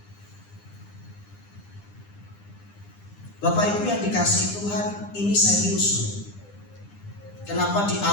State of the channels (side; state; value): right; late; 9.9 ms